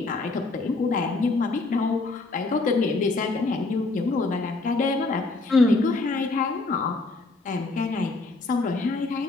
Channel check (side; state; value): right; quieter; 3.4 dB